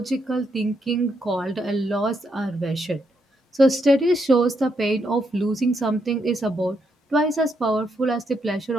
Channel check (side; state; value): both; normal; correlation 0.78